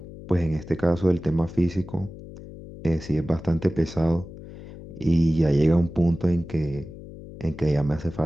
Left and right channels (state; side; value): noise; left; hum, 15 dB below the sound